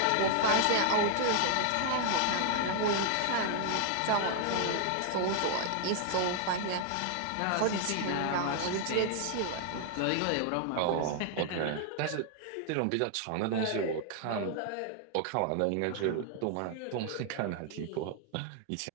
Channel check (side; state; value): both; different; correlation 0.00